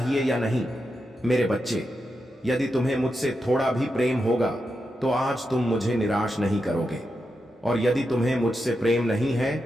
या नहीं। मेरे बच्चे, यदि तुम्हें मुझसे थोड़ा भी प्रेम होगा तो आज तुम मुझे निराश नहीं करोगे, और यदि तुम्हें मुझसे प्रेम नहीं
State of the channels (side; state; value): both; normal; correlation 0.87